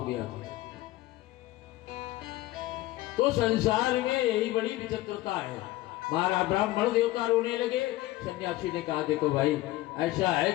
गया था। तो संसार में यही बड़ी विचित्रता है। महाराज ब्राह्मण देवता रोने लगे। सन्यासी ने कहा देखो भाई ऐसा है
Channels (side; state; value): right; quieter; 17.3 dB